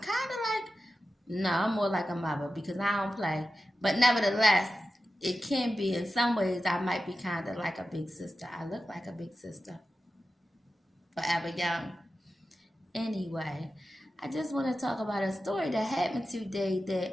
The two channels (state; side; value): normal; both; correlation 0.93